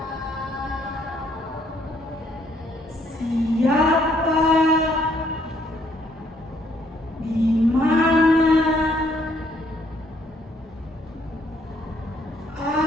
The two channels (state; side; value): normal; both; correlation 0.68